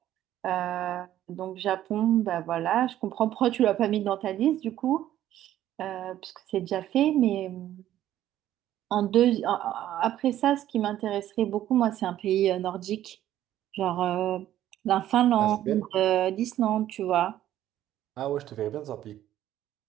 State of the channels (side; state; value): left; quieter; 12.6 dB